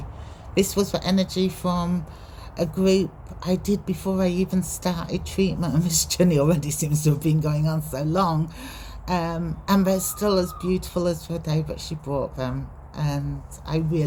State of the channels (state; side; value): identical; both; correlation 1.00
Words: This was the energy from a group I did before I even started treatment, and this journey already seems to have been going on so long. And they're still as beautiful as the day that she brought them, and I